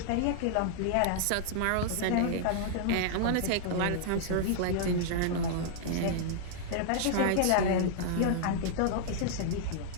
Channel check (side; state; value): both; different; correlation -0.01